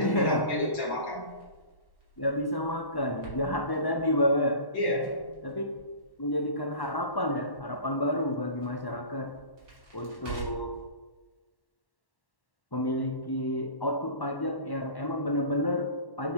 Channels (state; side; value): late; right; 1.1 ms